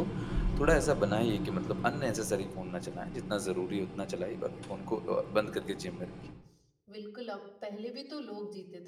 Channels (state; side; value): identical; both; correlation 1.00